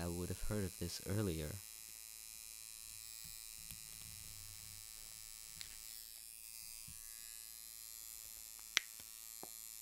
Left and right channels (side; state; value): both; identical; correlation 1.00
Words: would have heard of this earlier.